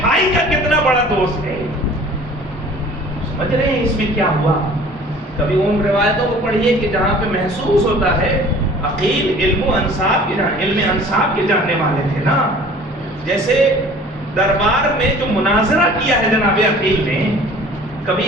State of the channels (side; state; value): both; normal; correlation 0.48